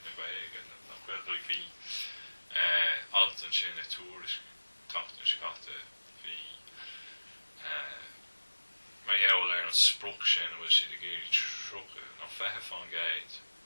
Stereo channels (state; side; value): inverted; both; correlation -1.00